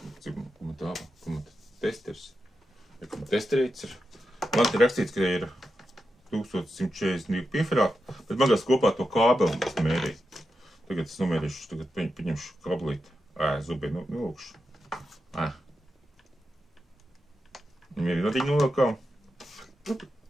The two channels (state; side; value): normal; both; correlation 0.88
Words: testers. Testerīts ir. Man te rakstīts, ka ir 1142 pieferāti, bet man gās kopā to kābeli es mērīju. Tagad es nomērīšu, tagad paņemšu kablīti. Zubē, nolūkšu. Mērī vadiņu nolūkām.